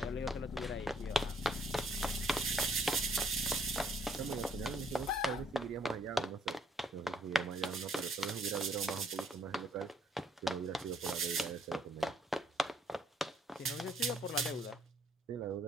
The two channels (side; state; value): both; normal; correlation 0.66